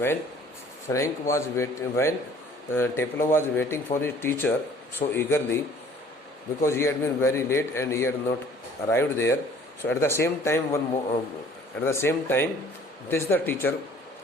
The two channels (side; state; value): both; normal; correlation 0.53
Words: Taplow was waiting for his teacher so eagerly, because he had been very late and he had not arrived there. So at the same time, this the teacher